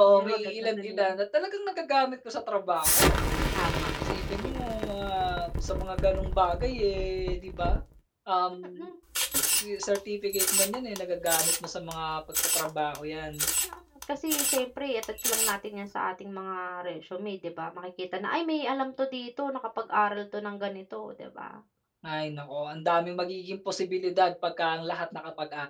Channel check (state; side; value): identical; both; correlation 1.00